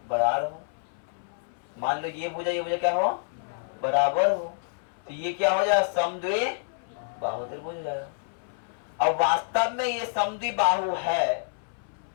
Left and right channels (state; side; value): silent; right; 59 dB below the other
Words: बराबर हो। मान लो ये भुजा क्या हो, बराबर हो, तो ये क्या हो जाएगा, समद्विबाहु त्रिभुज हो जाएगा। अब वास्तव में ये समद्विबाहु है